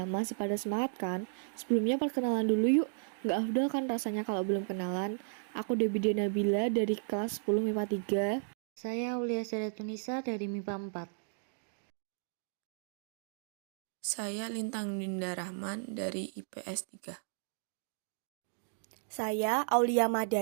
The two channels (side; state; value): left; silent; digital silence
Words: Masih pada semangat kan? Sebelumnya perkenalan dulu yuk. Nggak afdol kan rasanya kalau belum kenalan? Aku Debbie Nabila dari kelas 10 MIPA 3. Saya Aulia Tunisa dari MIPA 4. Saya Lintang Dinda Rahman dari IPS 3. Saya Aulia